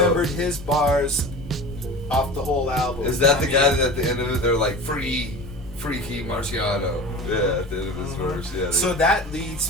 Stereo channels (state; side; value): normal; both; correlation 0.34